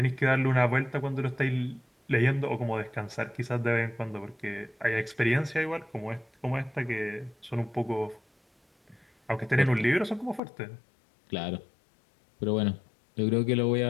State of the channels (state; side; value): drops out; right; at 10.4 s